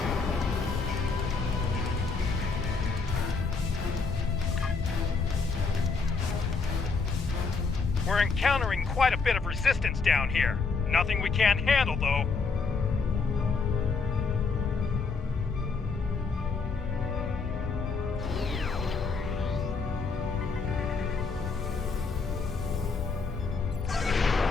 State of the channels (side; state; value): right; quieter; 4.6 dB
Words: We're encountering quite a bit of resistance down here. Nothing we can't handle, though.